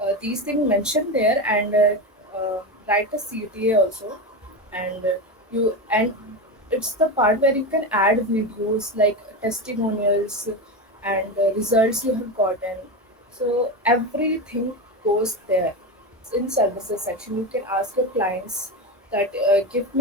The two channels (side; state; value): both; normal; correlation 0.18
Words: these things mentioned there, and write a CTA also. And and it's the part where you can add videos like testimonials and results you have gotten. So everything goes there. In services section, you can ask your clients that give